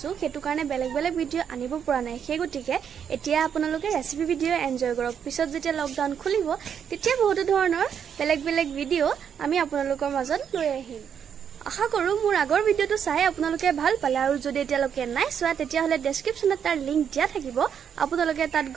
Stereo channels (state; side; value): quieter; left; 7.9 dB